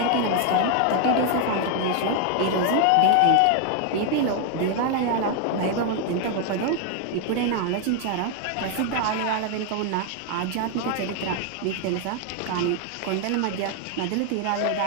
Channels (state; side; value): different; both; correlation 0.00